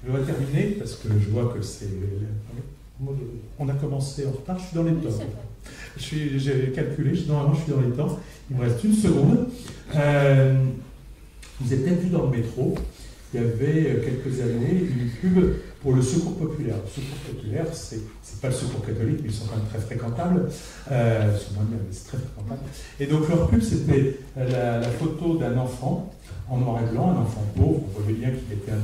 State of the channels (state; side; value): identical; both; correlation 1.00